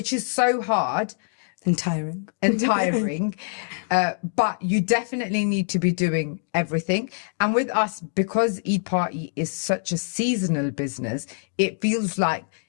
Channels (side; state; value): right; silent; 62 dB below the other